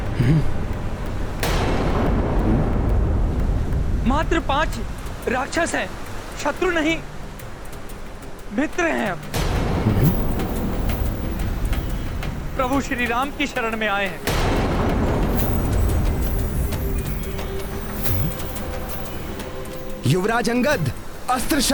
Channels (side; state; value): both; identical; correlation 1.00